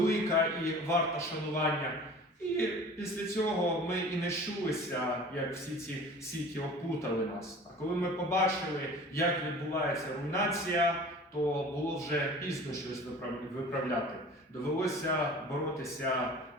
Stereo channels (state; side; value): normal; both; correlation 0.43